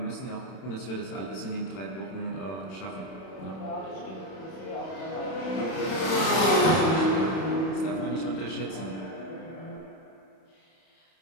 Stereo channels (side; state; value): right; late; 31 ms